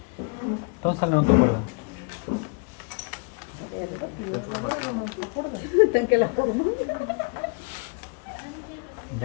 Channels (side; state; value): right; quieter; 36.3 dB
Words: Entonces no te acuerdas. Tan que la forma.